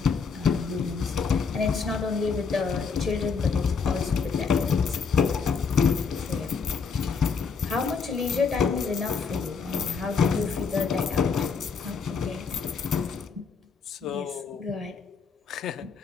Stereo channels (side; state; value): right; quieter; 5.5 dB